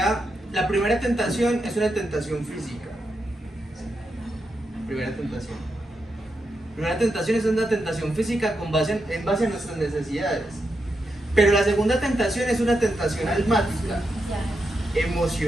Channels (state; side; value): normal; both; correlation 0.85